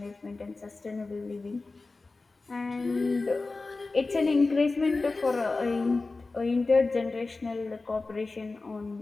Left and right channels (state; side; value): quieter; right; 3.6 dB